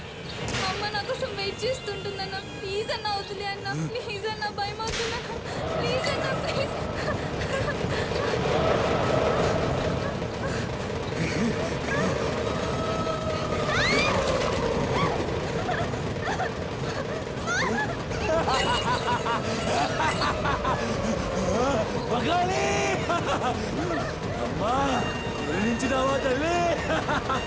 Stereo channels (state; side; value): identical; both; correlation 1.00